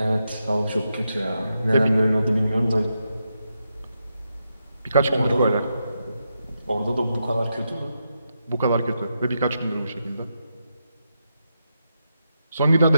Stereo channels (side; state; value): both; inverted; correlation -0.85